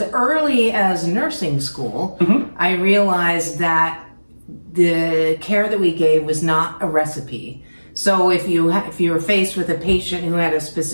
early as nursing school, I realized that the care that we gave was not a recipe. So if you were faced with a patient who had a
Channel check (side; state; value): both; inverted; correlation -1.00